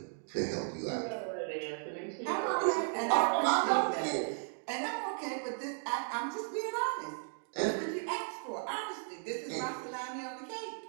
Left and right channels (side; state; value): left; silent; 54 dB below the other